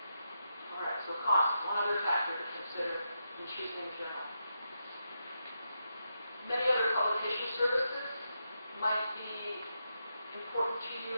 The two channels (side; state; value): both; inverted; correlation -0.84